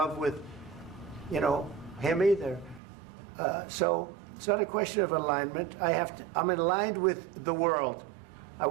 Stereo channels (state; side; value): drops out; left; at 2.8 s